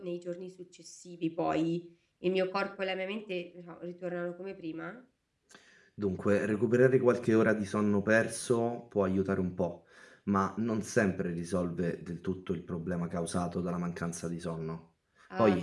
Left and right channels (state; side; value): identical; both; correlation 1.00